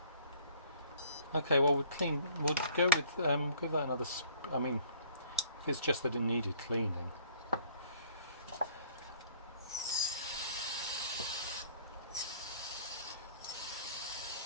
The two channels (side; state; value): both; inverted; correlation -0.56